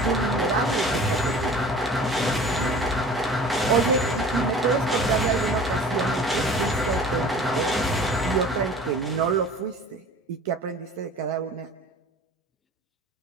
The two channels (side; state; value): both; normal; correlation 0.43